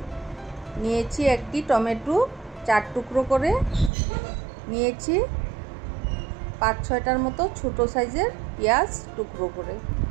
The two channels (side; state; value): left; drops out; at 3.9 s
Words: নিয়েছি একটি টমেটো 4 টুকরো করে নিয়েছি, 5-6টার মতো ছোট সাইজের পেঁয়াজ টুকরো করে